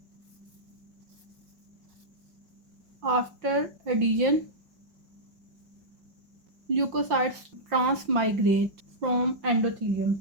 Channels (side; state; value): left; late; 5.7 ms